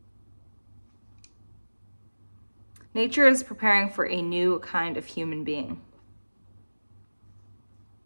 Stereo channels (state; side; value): inverted; both; correlation -1.00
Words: Nature is preparing for a new kind of human being.